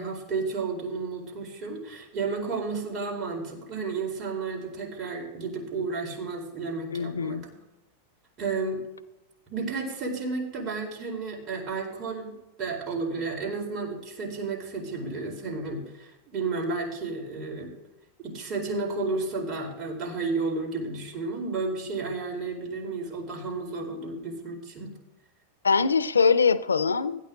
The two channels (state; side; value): inverted; both; correlation -0.34